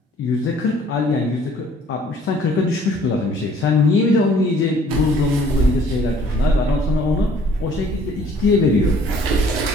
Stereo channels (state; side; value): normal; both; correlation 0.57